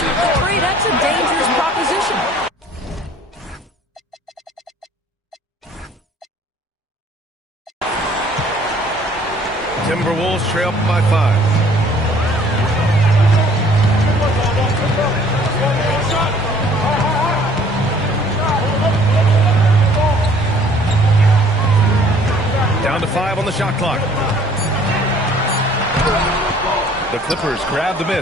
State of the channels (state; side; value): normal; both; correlation 0.56